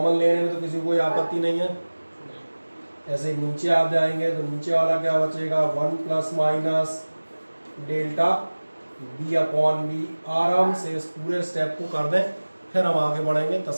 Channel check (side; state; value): both; inverted; correlation -1.00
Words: लेने में तो किसी को कोई आपत्ति नहीं है। ऐसे ही नीचे आप जाएंगे तो नीचे वाला क्या बचेगा, 1 plus minus delta b upon B. आराम से इस पूरे स्टेप को कर दें, फिर हम आगे बढ़ेंगे